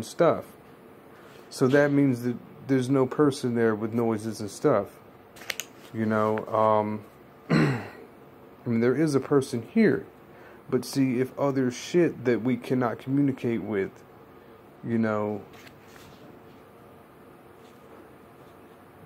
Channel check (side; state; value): both; identical; correlation 1.00